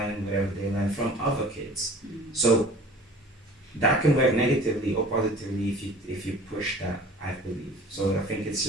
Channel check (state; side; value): normal; both; correlation 0.45